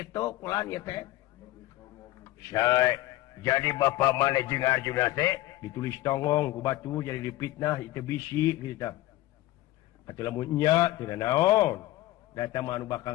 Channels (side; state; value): right; quieter; 16.7 dB